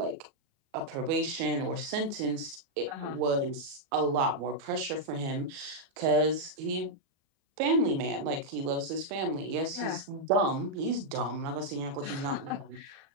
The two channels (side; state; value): left; late; 37 ms